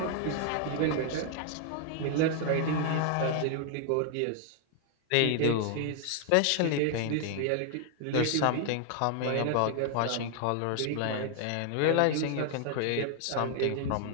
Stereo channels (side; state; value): both; different; correlation 0.00